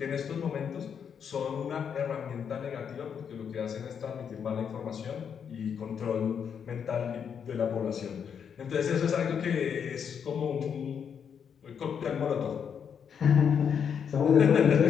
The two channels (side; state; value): right; quieter; 7.5 dB